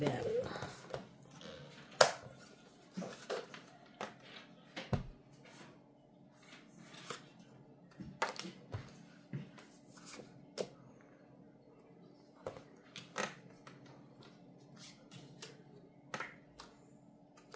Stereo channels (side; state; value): both; identical; correlation 1.00